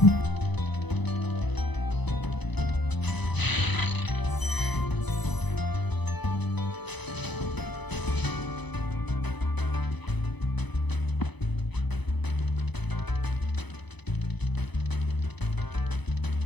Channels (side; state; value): right; late; 0.99 ms